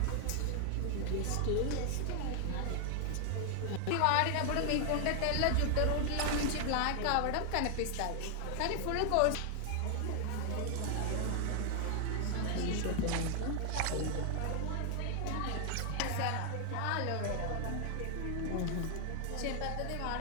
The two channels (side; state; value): both; different; correlation 0.00